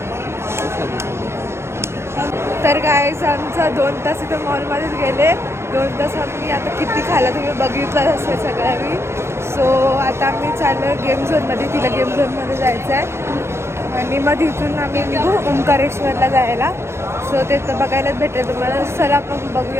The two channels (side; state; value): left; late; 0.13 ms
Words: तर गाईज आमचा 2 तास इथं मॉलमध्येच गेले. 2 तास आम्ही आता किती खायला तुम्ही बघितलं असेल सगळ्या मी. सो आता आम्ही चाललो गेम झोनमध्ये. तिला गेम झोनमध्ये जायचं आहे आणि मग तिथून आम्ही निघू ओंकारेश्वरला जायला. सो ते तर बघायलाच भेटेल तुम्हाला. चला आपण